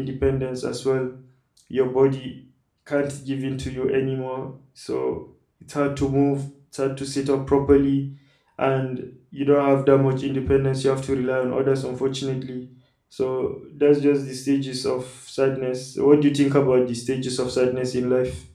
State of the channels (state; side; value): identical; both; correlation 1.00